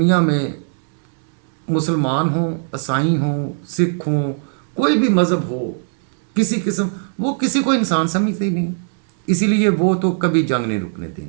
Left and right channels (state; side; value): silent; left; digital silence